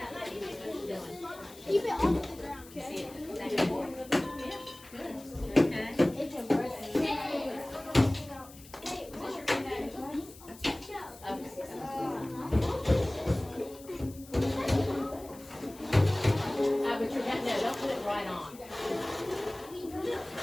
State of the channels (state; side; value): noise; left; hiss, 20 dB below the sound